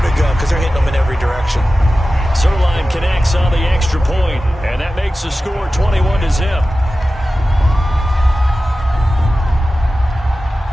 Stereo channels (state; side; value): normal; both; correlation 0.95